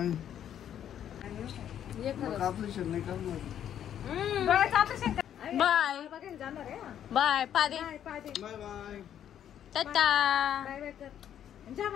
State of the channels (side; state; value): right; quieter; 10.0 dB